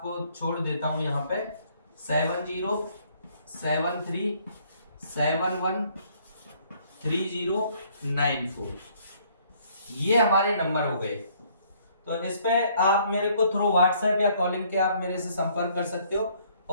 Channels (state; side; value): inverted; both; correlation -0.63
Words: छोड़ देता हूं यहाँ पे, 7073713094, ये हमारे नंबर हो गए। तो इस पे आप मेरे को थ्रू व्हाट्सएप या कॉलिंग के आप मेरे से संपर्क कर सकते हो,